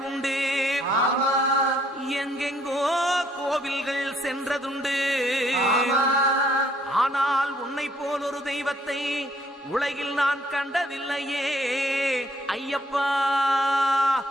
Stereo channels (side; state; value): both; normal; correlation 0.66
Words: உண்டு, எங்கெங்கோ கோவில்கள் சென்றதுண்டு. ஆனால் உன்னை போல் ஒரு தெய்வத்தை உலகில் நான் கண்டதில்லையே ஐயப்பா.